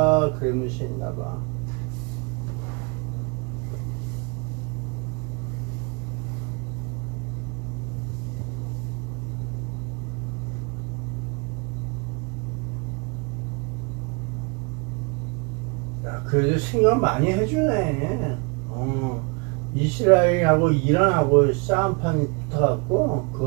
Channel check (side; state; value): left; quieter; 31.2 dB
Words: 그러면서 있나봐. 야, 그래도 생각 많이 해주네. 이스라엘하고 이란하고 싸움판이 붙어갖고